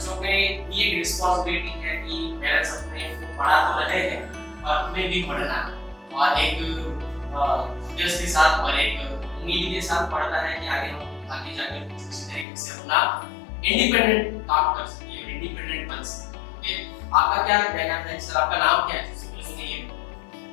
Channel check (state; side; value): drops out; right; at 12.5 s